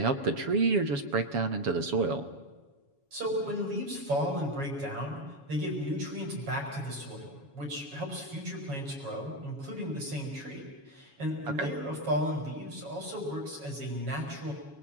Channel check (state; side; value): late; left; 7.2 ms